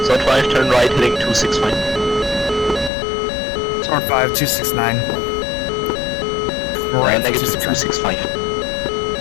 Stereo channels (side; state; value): right; drops out; at 2.9 s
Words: Sword 5, turn right, heading 265. Sword 5, 269. Right, negative 265.